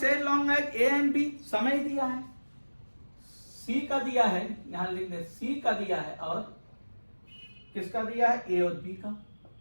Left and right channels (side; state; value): both; inverted; correlation -1.00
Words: as long as A and B, समय दिया है। सी का दिया है, यहां लिख दे, सी का दिया है और किसका दिया है, ए और बी का।